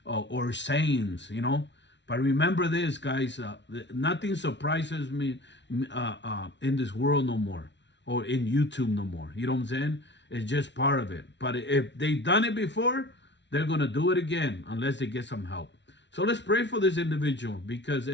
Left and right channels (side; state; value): right; late; 0.52 ms